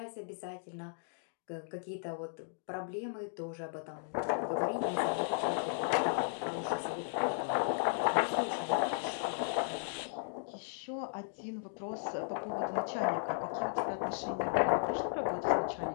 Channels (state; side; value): silent; right; digital silence